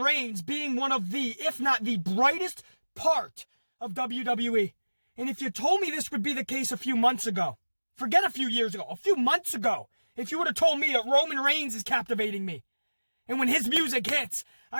being one of the, if not the brightest part of WWE. And if you told me this would be the case a few months ago, forget a few years ago, a few months ago, if you would have told me that Roman Reigns is captivating me, and when his music hits,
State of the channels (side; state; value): both; inverted; correlation -1.00